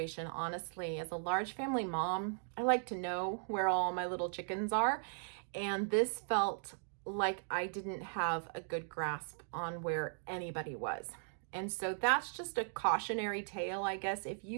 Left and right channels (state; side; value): silent; left; digital silence